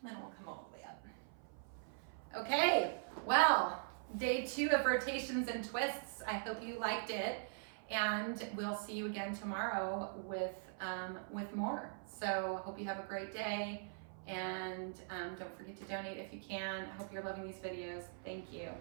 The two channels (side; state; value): left; silent; 50 dB below the other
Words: then we'll come all the way up. Okay, well, day 2 of rotations and twists. I hope you liked it. And we'll see you again tomorrow with more. So I hope you have a great day. And don't forget to donate if you can. I hope you're loving these videos. Thank you.